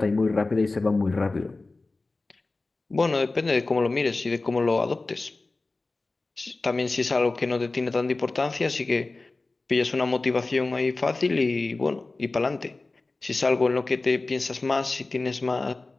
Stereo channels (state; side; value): quieter; right; 3.4 dB